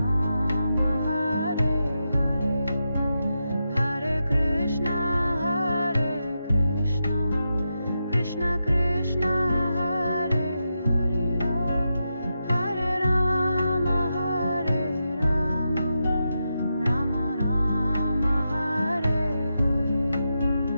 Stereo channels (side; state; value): both; inverted; correlation -0.87